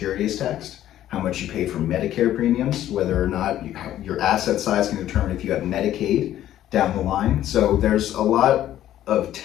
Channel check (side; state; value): right; quieter; 12.4 dB